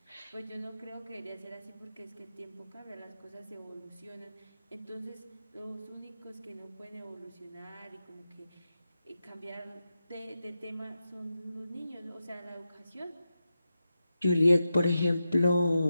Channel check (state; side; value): inverted; both; correlation -0.90